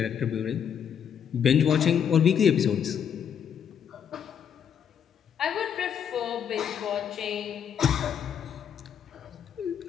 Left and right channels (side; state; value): right; quieter; 8.2 dB